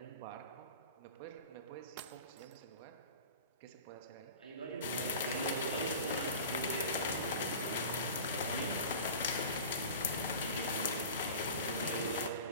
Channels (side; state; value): both; inverted; correlation -0.36